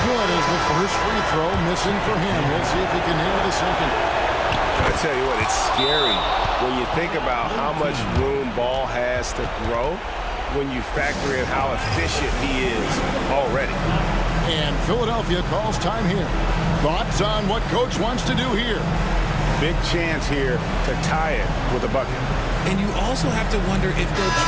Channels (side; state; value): both; identical; correlation 1.00